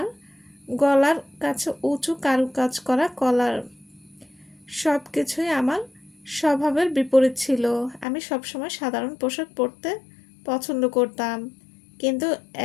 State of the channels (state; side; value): drops out; right; at 8.1 s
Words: গলার কাছে উঁচু কারুকাজ করা কলার, সব কিছুই আমার স্বভাবের বিপরীত ছিল। আমি সবসময় সাধারণ পোশাক পরতে পছন্দ করতাম, কিন্তু